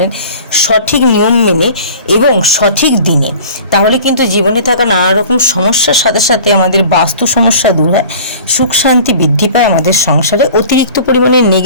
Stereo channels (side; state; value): both; inverted; correlation -0.43